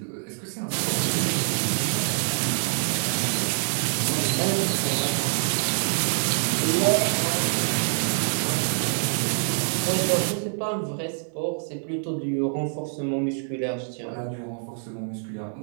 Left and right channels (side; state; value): left; silent; 61 dB below the other